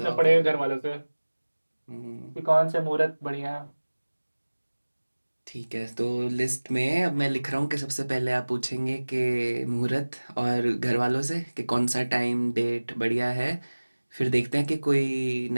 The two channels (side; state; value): both; inverted; correlation -1.00